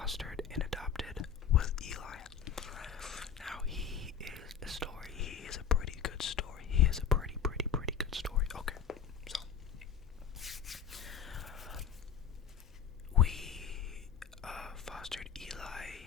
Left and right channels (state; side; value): quieter; right; 7.8 dB